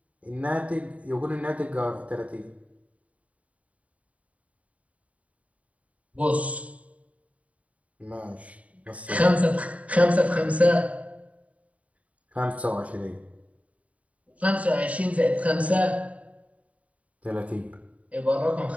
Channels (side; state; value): left; late; 0.067 ms